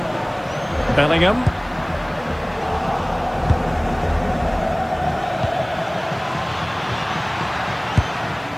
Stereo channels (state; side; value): noise; right; hiss, 30 dB below the sound